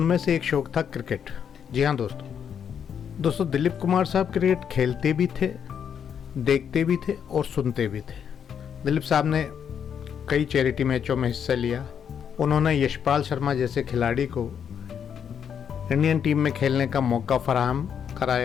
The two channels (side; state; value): right; quieter; 8.0 dB